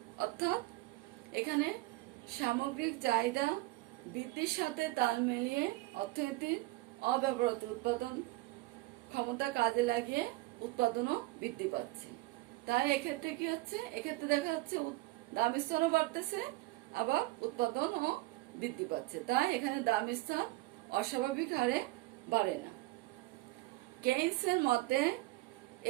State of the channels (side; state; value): left; quieter; 19.9 dB